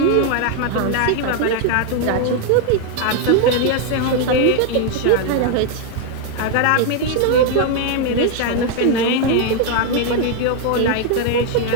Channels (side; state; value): both; different; correlation 0.00